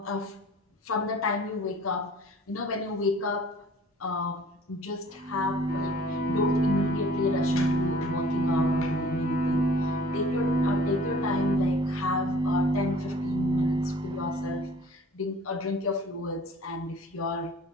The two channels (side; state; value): both; normal; correlation 0.50